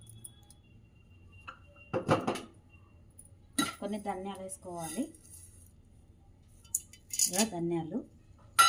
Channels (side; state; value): both; identical; correlation 1.00